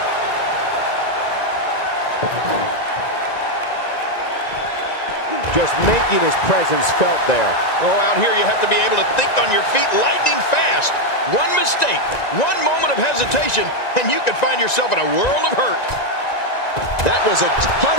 Just making his presence felt there. Oh, out here you have to be able to think on your feet lightning fast. One mistake, one moment of hesitation, and you could find yourself in a world of hurt. That was a ton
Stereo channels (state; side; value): late; right; 1.9 ms